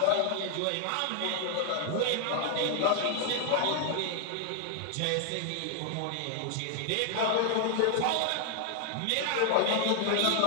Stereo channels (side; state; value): both; different; correlation 0.00